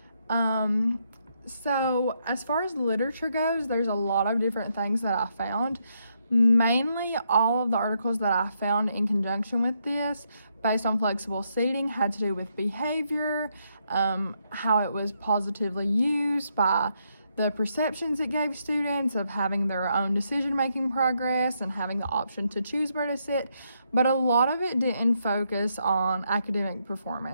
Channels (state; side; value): inverted; both; correlation -0.78